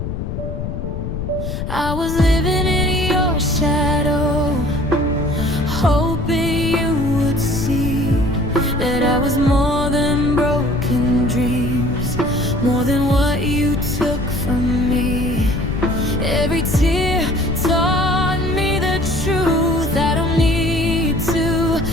I was living in your shadow, hoping you would see that I was more than broken dreams, more than what you took from me. Every tear taught me the truth. I don't need to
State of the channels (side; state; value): left; noise; rumble, 5 dB below the sound